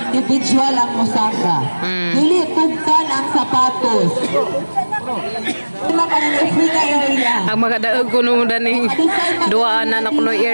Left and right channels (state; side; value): inverted; both; correlation -1.00